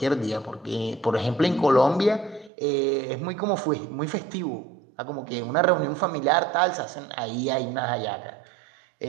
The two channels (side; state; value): left; drops out; at 2.5 s